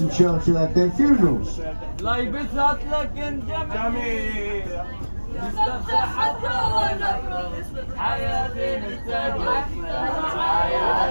Churchill had their funerals. On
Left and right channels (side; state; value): both; inverted; correlation -1.00